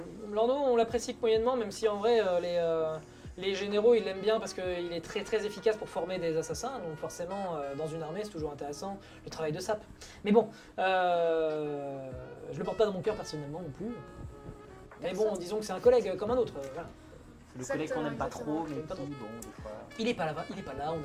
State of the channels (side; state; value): both; identical; correlation 1.00